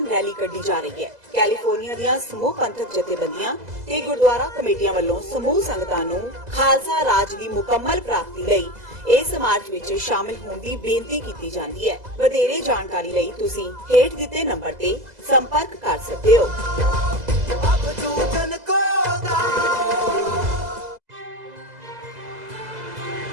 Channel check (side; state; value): left; late; 2.0 ms